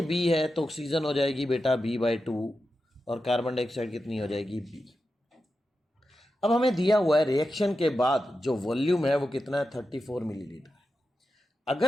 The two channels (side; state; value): both; normal; correlation 0.90